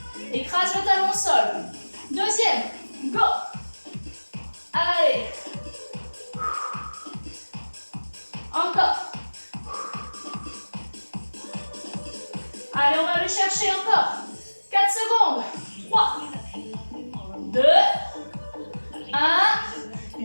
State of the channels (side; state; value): both; inverted; correlation -1.00